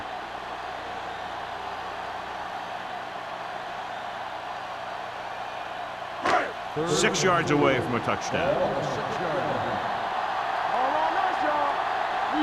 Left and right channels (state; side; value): identical; both; correlation 1.00